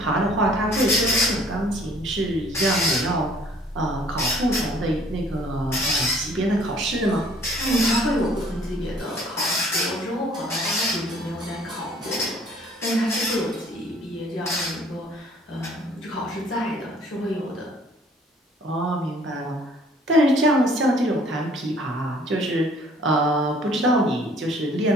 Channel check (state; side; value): normal; both; correlation 0.57